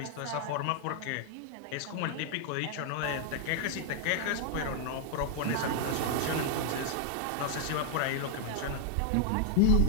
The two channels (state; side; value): different; both; correlation 0.00